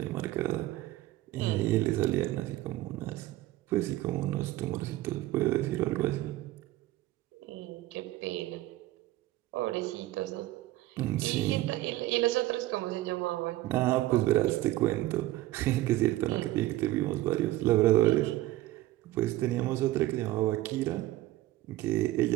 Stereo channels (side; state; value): left; quieter; 16.3 dB